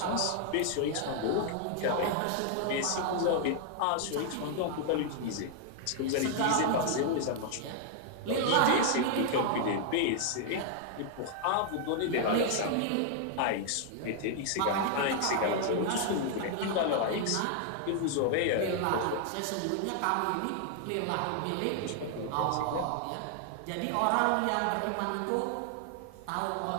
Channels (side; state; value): both; different; correlation 0.00